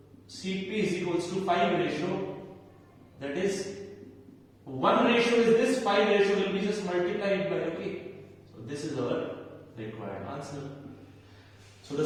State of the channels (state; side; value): identical; both; correlation 1.00